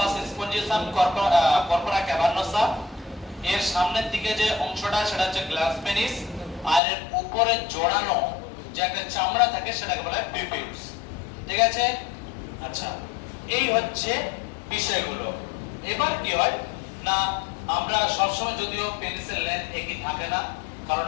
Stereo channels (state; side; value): drops out; right; at 6.8 s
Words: স্পঞ্জিওসাম, কর্পোরা ক্যাভার্নোসা। এর সামনের দিকে যে অংশটা সেটা হচ্ছে গ্ল্যান্স পেনিস, আর এর উপরে জড়ানো যে একটা চামড়া থাকে সেটাকে বলা হয় প্রিপিউলস। ঠিক আছে, আচ্ছা, এই হচ্ছে বিষয়গুলো। এবার কি হয় না, আমরা সবসময় যদিও পেনিসের লেন্থ একই থাকে না, কারণ